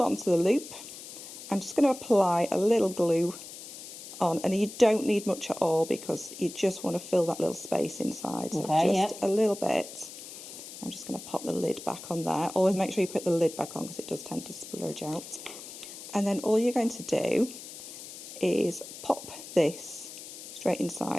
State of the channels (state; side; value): noise; left; hiss, 13 dB below the sound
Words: to the loop. I'm just going to apply a little glue on, and you don't need much at all because you just want to fill that little space inside. So just a little bit. I'm just going to pop the lid back on there. Always make sure you put the lid back on because it does tend to splurge out. And then all you're going to do is pop this straight